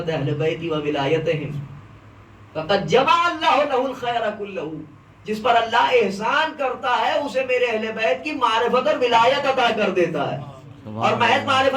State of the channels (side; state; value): both; identical; correlation 1.00